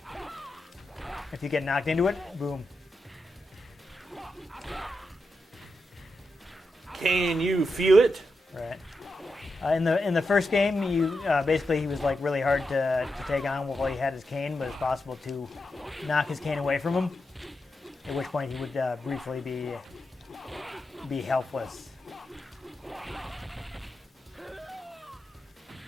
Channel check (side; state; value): both; normal; correlation 0.87